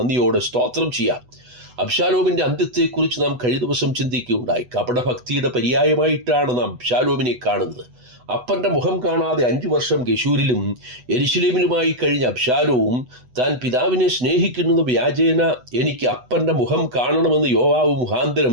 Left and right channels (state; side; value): late; left; 8.1 ms